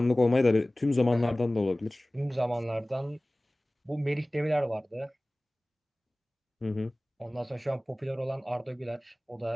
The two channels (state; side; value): normal; both; correlation 0.98